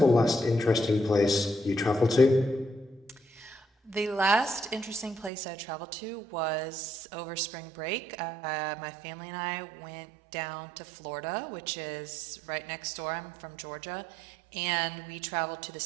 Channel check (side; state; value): left; drops out; at 5.3 s